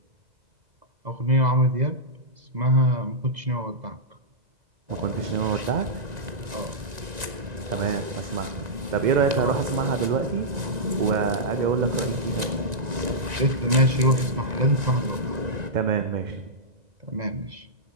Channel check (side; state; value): left; late; 1.9 ms